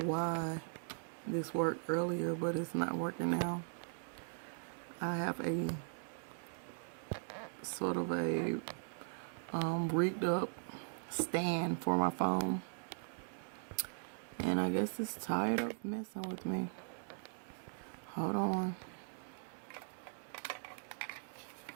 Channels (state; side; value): silent; left; digital silence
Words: why this worked earlier, but it's not working now. I have a sort of a rigged up stand for my phone. And I guess it's tired of messing with me. Hold on.